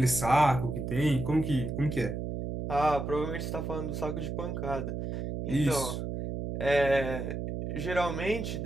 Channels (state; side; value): noise; right; hum, 4 dB below the sound